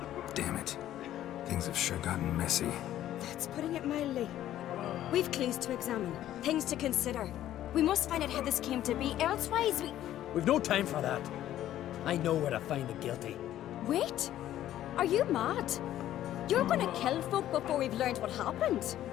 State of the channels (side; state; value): right; quieter; 12.6 dB